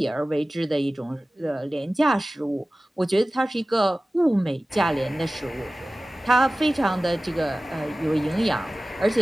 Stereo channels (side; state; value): both; normal; correlation 0.97